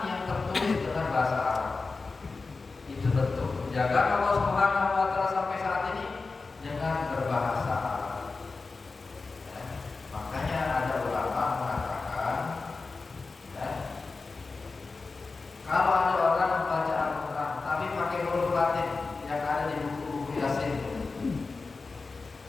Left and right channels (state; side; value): quieter; right; 4.0 dB